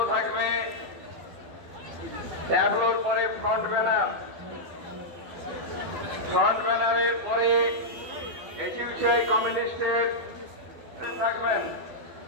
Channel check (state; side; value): late; left; 12 ms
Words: থাকবে, ট্যাবলোর পরে ফ্রন্ট ব্যানার, ফ্রন্ট ব্যানারের পরে এসইউসিআই কমিউনিস্টের থাকবেন।